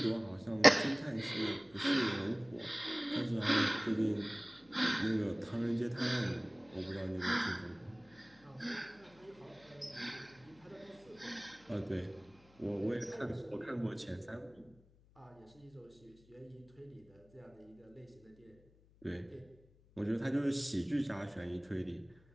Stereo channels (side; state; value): left; noise; hum, 28 dB below the sound